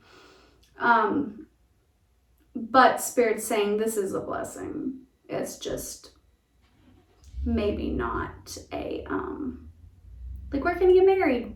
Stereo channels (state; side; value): identical; both; correlation 1.00